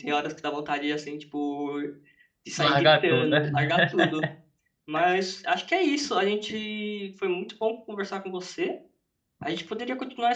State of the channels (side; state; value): both; identical; correlation 1.00